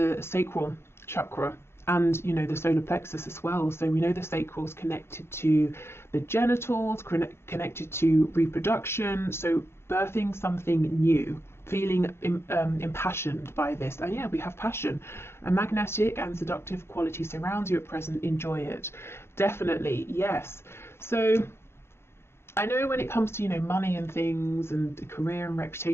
sacral chakra and, you know, the solar plexus as well. So we know the sacral is connected to the genitals, connected to reproduction, so birthing something new, feeling impassioned by this. And yeah, we have passion. A magnetic and seductive quality surrounds you at present. Enjoy it. Definitely, yes. So I know when it comes to, you know, money and things and career and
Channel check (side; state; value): right; late; 0.12 ms